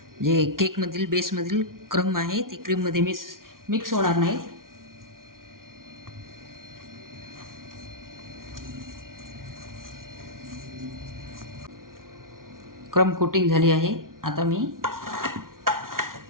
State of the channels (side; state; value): left; late; 0.91 ms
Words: बेसमधील क्रम आहे ती क्रीममध्ये मिक्स होणार नाही. क्रम कोटिंग झाली आहे. आता मी